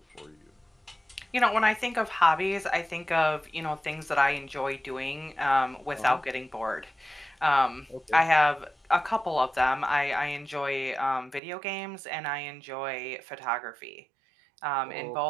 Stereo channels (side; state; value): left; drops out; at 11.4 s